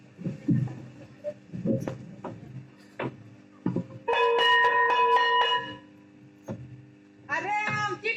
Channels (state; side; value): identical; both; correlation 1.00